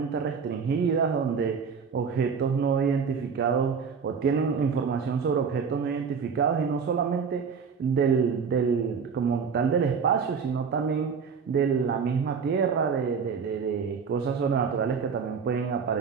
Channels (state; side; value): quieter; left; 6.0 dB